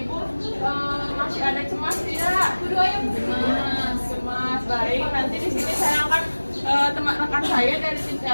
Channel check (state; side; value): inverted; both; correlation -1.00